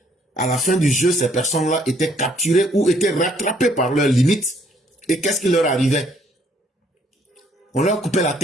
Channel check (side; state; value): both; normal; correlation 0.65